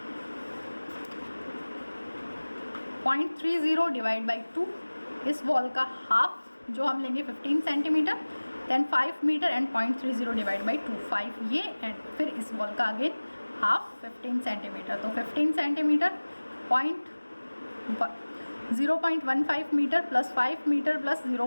0.30 डिवाइड बाई 2। इस वॉल का हाफ जो हम लेंगे 15 centimetre, then 5 metre and 0.30 divide by 2, 5 ये, एंड फिर इस वॉल का अगेन हाफ 15 सेंटीमीटर। तो 15 centimetre 0.15 metre plus 5 metre plus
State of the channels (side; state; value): both; inverted; correlation -1.00